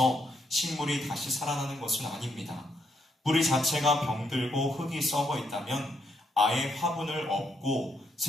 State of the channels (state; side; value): normal; both; correlation 0.76